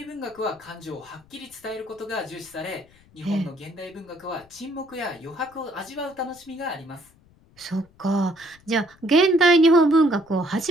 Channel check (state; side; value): noise; left; rumble, 29 dB below the sound